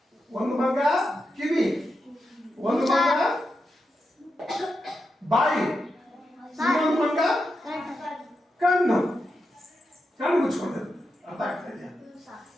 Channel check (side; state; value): both; normal; correlation 0.87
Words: ಒಂದು ಮಂಗ, ಕಿವಿ ಒಂದು ಮಂಗ, ಬಾಯಿ ಇನ್ನೊಂದು ಮಂಗ, ಕಣ್ಣು ಮುಚ್ಕೊಂಡಿರುತ್ತೆ. ಅರ್ಥ ಆಗ್ತಾ ಇದೆಯಾ?